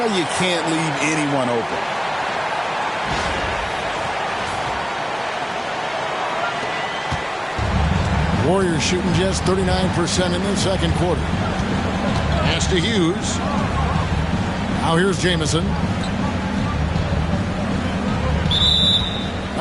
you can't leave anyone open. Warriors shooting just 39% in the second quarter. Pass to Hughes. Now here's Jamison.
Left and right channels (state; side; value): identical; both; correlation 1.00